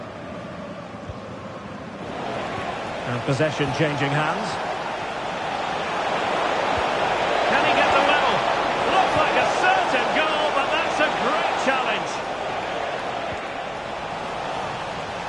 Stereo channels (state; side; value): identical; both; correlation 1.00